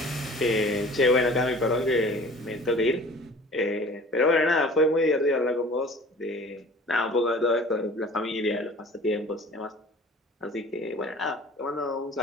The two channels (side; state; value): both; normal; correlation 0.46